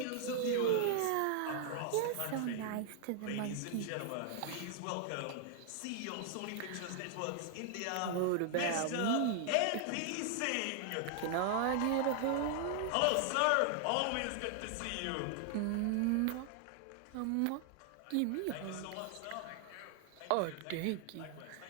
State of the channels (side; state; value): both; different; correlation 0.00